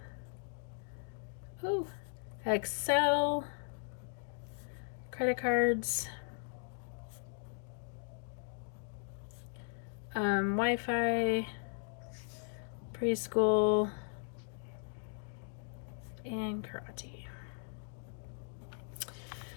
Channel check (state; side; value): silent; right; digital silence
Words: Oh, Excel, credit cards, Wi-Fi, preschool, and karate.